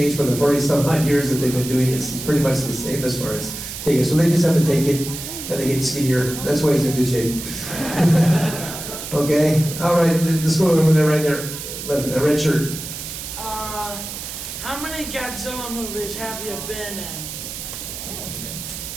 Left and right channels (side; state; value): right; noise; hiss, 8 dB below the sound